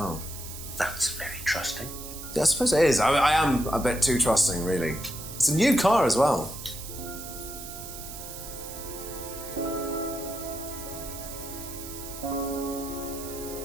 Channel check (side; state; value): right; noise; hiss, 11 dB below the sound